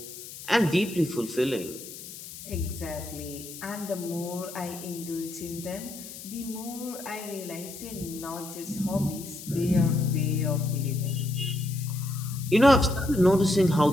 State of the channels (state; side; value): noise; left; hiss, 13 dB below the sound